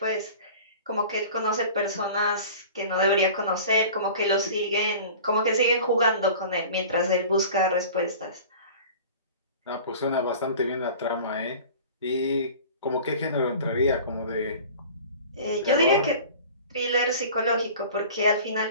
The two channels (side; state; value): both; inverted; correlation -0.41